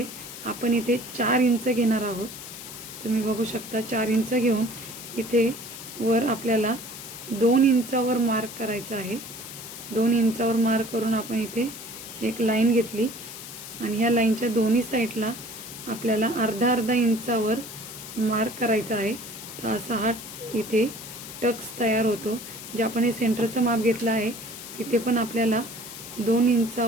आपण इथे 4 इंच घेणार आहोत। तुम्ही बघू शकता 4 इंच घेऊन इथे वर आपल्याला 2 इंचावर मार्क करायचा आहे। 2 इंचावर मार्क करून आपण इथे एक लाईन घेतली आणि ह्या लाईनच्या दोन्ही साईडला आपल्याला अर्धा इंचावर मार्क करायचा आहे। तर असा हा इथे टक्स तयार होतो। जे आपण हे सेंटरचं माप घेतलं आहे तिथे पण आपल्याला 2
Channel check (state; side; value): noise; left; hiss, 12 dB below the sound